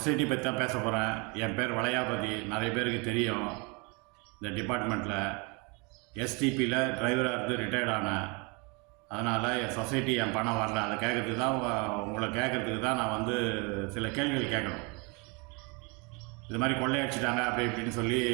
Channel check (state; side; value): quieter; left; 30.3 dB